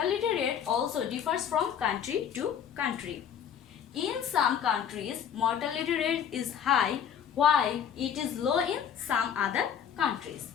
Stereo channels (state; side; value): quieter; right; 8.6 dB